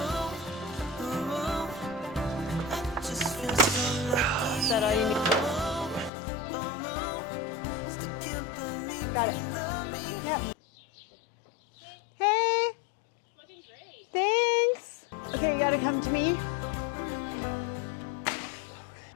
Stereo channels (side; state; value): right; drops out; at 6.1 s